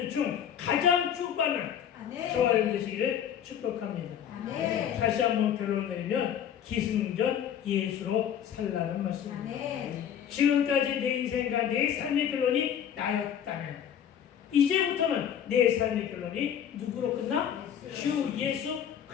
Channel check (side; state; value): right; quieter; 9.1 dB